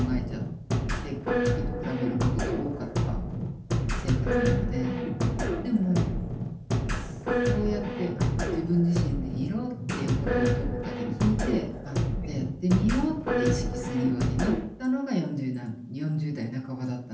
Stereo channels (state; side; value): identical; both; correlation 1.00